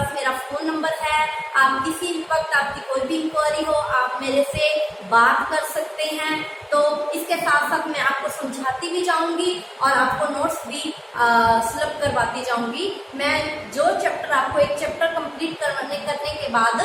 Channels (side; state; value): both; identical; correlation 1.00